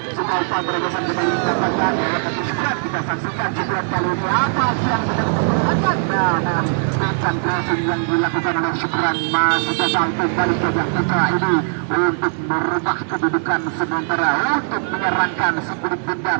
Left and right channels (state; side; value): silent; left; digital silence